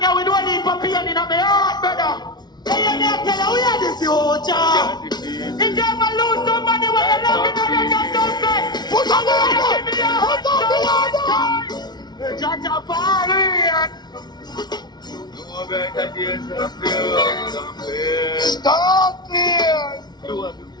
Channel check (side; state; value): right; late; 0.20 ms